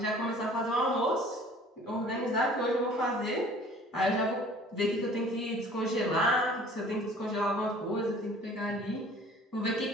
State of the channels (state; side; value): normal; both; correlation 0.50